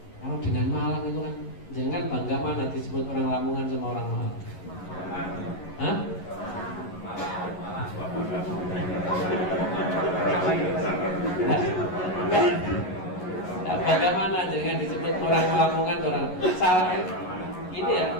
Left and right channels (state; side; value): late; right; 11 ms